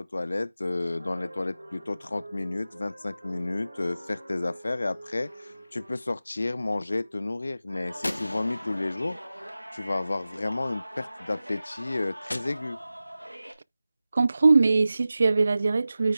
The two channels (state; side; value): inverted; both; correlation -0.95